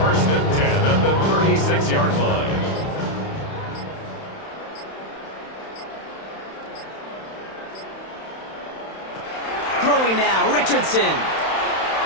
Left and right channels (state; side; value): late; right; 31 ms